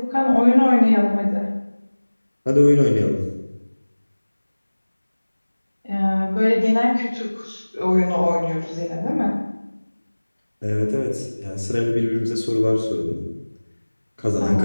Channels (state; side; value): inverted; both; correlation -1.00